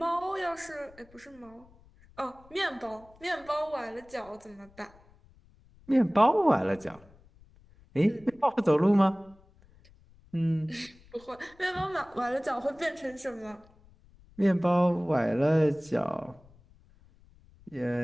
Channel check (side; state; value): left; noise; rumble, 27 dB below the sound